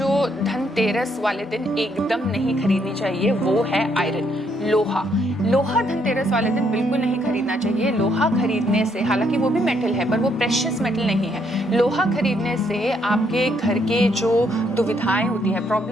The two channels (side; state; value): both; normal; correlation 0.72